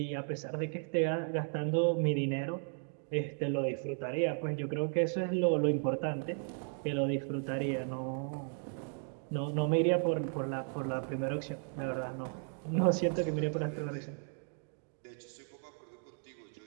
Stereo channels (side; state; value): left; silent; 54 dB below the other